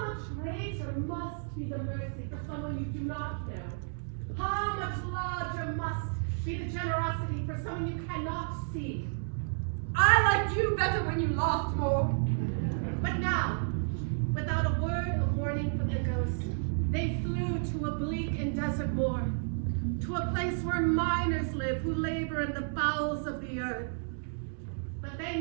much greater must be the mercy for someone you do not know? How much larger must be the generosity for someone you cannot see? I liked you better when you laughed more. But now, without a word of warning from the ghost, they flew to a bleak and desert moor, to a place where miners live who labor in the bowels of the earth. But they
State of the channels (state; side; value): silent; left; digital silence